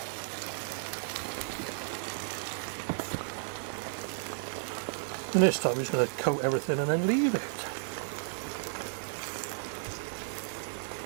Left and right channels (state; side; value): silent; left; digital silence